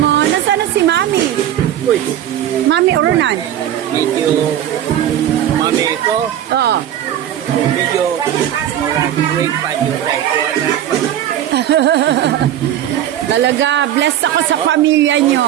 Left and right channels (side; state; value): left; quieter; 11.4 dB